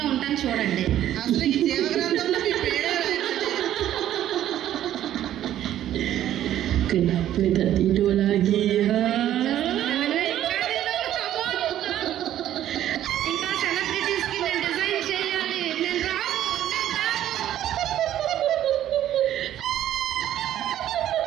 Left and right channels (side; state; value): left; quieter; 12.0 dB